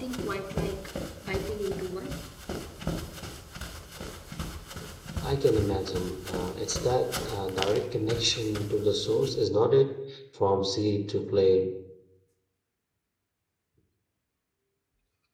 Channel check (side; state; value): both; identical; correlation 1.00